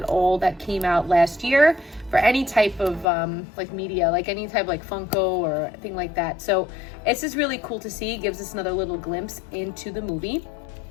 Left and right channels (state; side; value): drops out; right; at 3.1 s